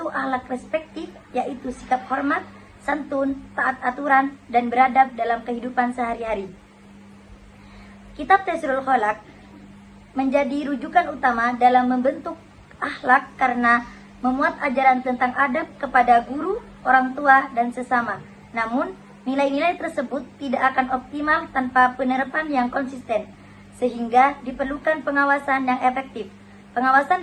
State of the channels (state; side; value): identical; both; correlation 1.00